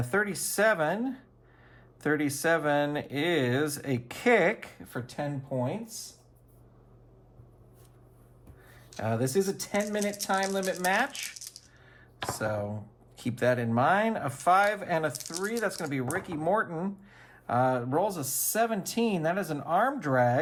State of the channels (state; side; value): identical; both; correlation 1.00